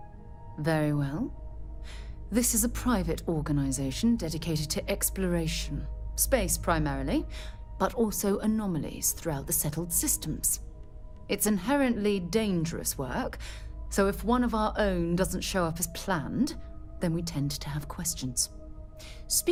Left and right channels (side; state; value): both; identical; correlation 1.00